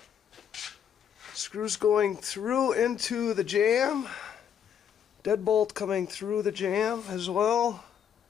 Screws going through into the jamb. Deadbolt coming through the jamb as well.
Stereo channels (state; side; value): quieter; right; 8.5 dB